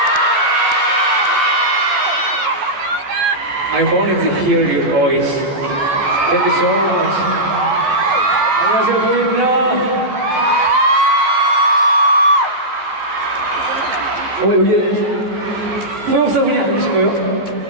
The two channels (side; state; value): left; late; 14 ms